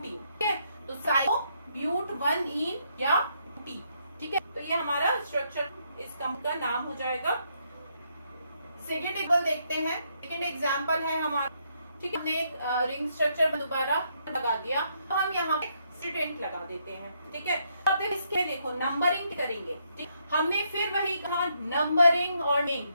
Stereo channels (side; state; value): both; inverted; correlation -0.75